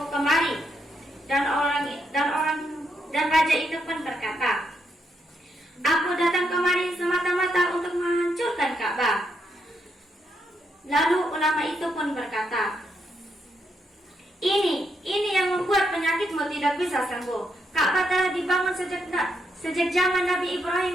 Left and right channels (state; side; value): normal; both; correlation 0.79